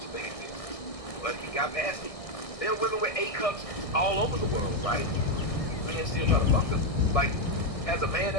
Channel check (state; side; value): late; right; 1.6 ms